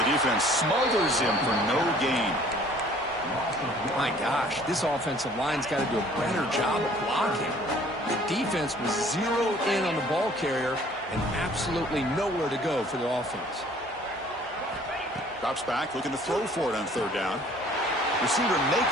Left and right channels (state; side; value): normal; both; correlation 0.55